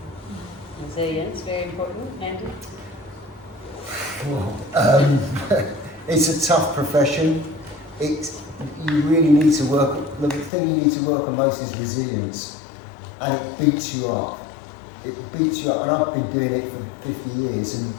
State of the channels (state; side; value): drops out; right; at 10.5 s